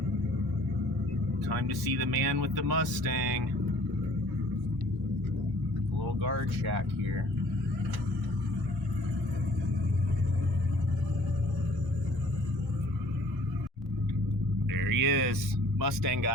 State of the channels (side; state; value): both; normal; correlation 0.54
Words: Time to see the man with the Mustang. A little guard shack here. There he is, Mustang